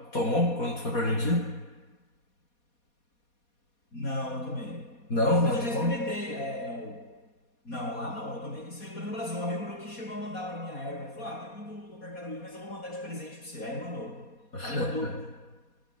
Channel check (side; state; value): right; late; 4.2 ms